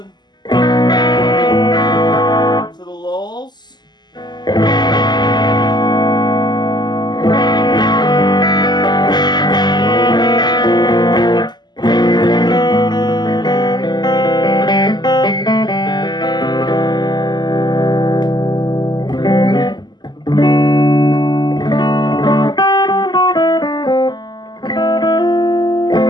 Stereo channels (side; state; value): right; late; 0.21 ms